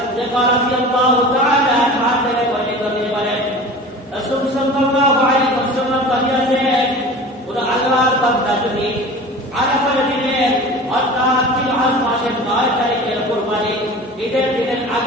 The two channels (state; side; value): normal; both; correlation 0.37